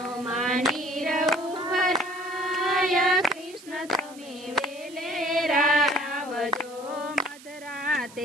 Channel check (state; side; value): noise; right; hiss, 20 dB below the sound